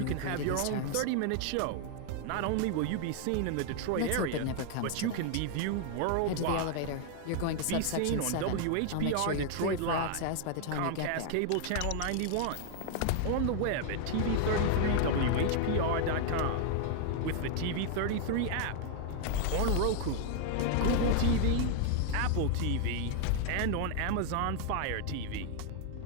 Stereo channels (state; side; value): different; both; correlation 0.00